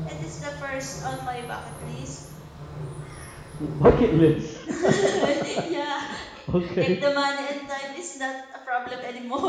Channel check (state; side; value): identical; both; correlation 1.00